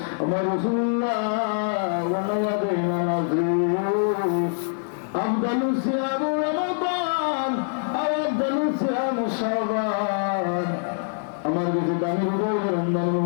আমার রাসূলুল্লাহ ওয়ালা দেনা নাজরি আফদালুস সিয়াম রমাদান আও আফদালুস সিয়াম শাবান, আমার কাছে দামি রোজা রমজান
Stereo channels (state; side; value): silent; right; 62 dB below the other